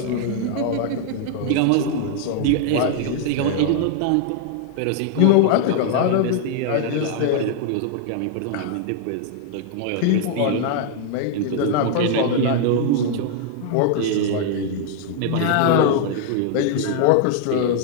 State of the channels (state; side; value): different; both; correlation 0.00